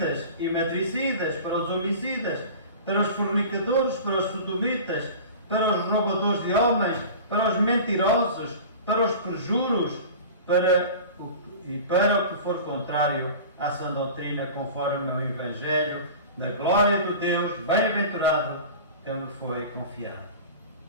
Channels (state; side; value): inverted; both; correlation -0.37